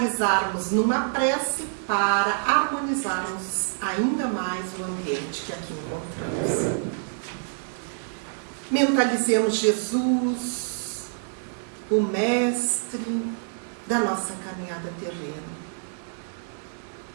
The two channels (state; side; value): silent; left; digital silence